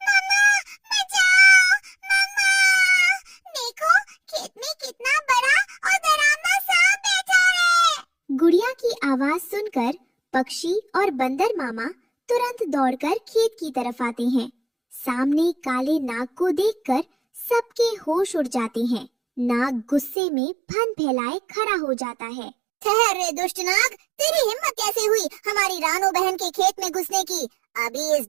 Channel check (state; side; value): drops out; left; at 20.2 s